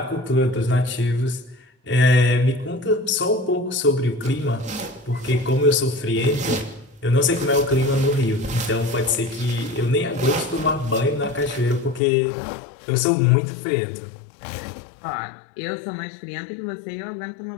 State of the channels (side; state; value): right; drops out; at 12.0 s